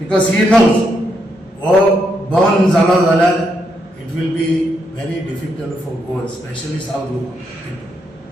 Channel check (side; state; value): both; normal; correlation 0.79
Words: ही नोज हो बंद जालो जाल्यार it will be very difficult for Goa especially south Goa